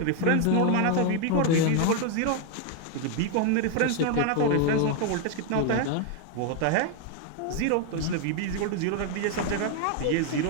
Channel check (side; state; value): both; different; correlation 0.01